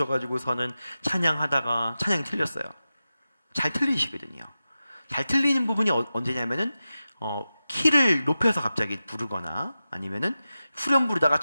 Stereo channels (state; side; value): inverted; both; correlation -0.93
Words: 찬양하다가 찬양이 틀렸어요. 잘 틀리시거든요. 잘 틀리는 부분이 언제냐면은 키를 높여서 갑자기 부르거나 아니면은 후렴 부르다가